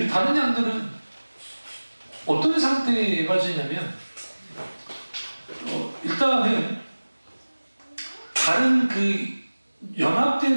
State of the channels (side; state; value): both; inverted; correlation -1.00